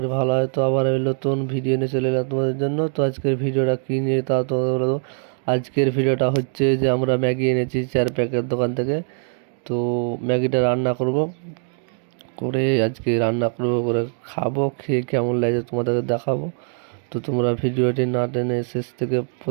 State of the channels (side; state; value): left; silent; 59 dB below the other